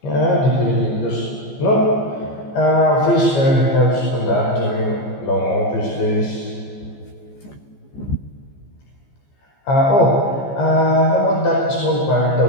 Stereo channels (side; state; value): right; late; 14 ms